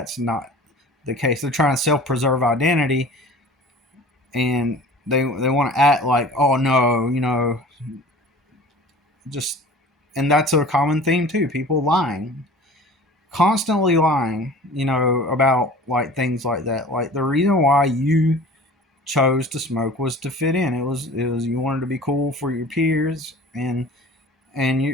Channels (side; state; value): both; normal; correlation 0.43